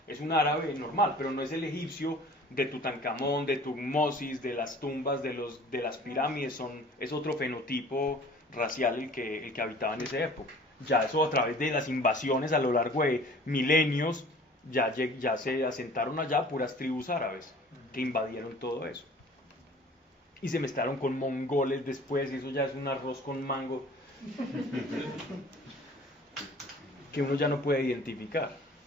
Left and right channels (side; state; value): both; normal; correlation 0.47